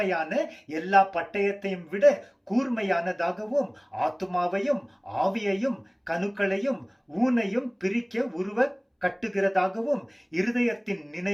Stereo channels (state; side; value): identical; both; correlation 1.00